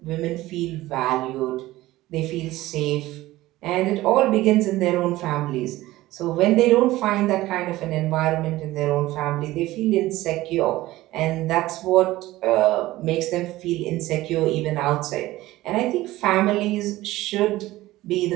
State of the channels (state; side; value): quieter; left; 17.1 dB